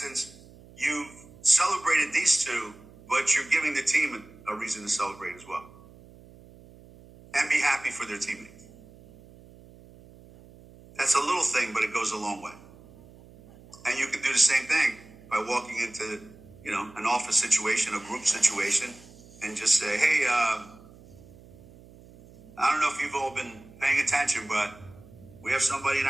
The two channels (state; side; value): noise; right; hum, 22 dB below the sound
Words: you've celebrated these two, but you're giving the team a reason to celebrate as well. And be happy for their teammates. That's a little thing, but it goes a long way. And you can do the same thing by walking into, an office situation, a group situation, and just say, hey, I don't know if you've all been paying attention, but we have somebody in